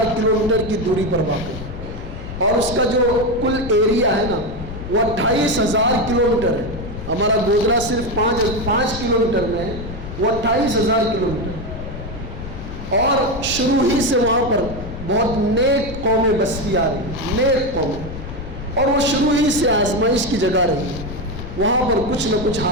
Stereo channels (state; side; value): noise; left; rumble, 10 dB below the sound